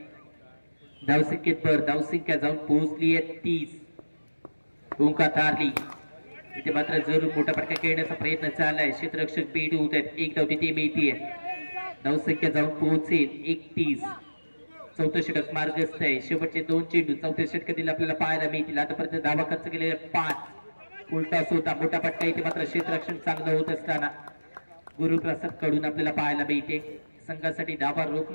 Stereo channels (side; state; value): both; inverted; correlation -1.00